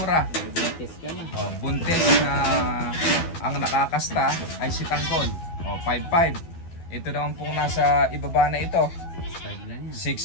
May buntis ka na. O, buntis na ang nakakasta ay si Tanggol. O, 5.5. Ito naman pong nasa ibaba na ito, 6.5 lang yan.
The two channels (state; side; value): late; right; 12 ms